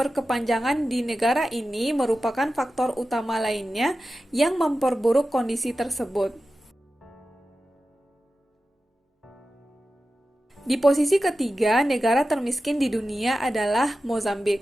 di negara ini merupakan faktor utama lainnya yang memperburuk kondisi tersebut. Di posisi ketiga, negara termiskin di dunia adalah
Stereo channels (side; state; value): both; normal; correlation 0.93